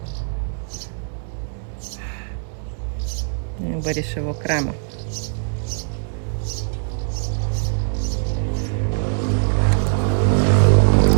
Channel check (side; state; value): left; silent; digital silence